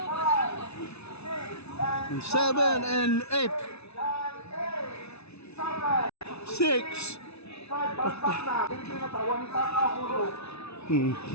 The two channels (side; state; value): right; late; 0.80 ms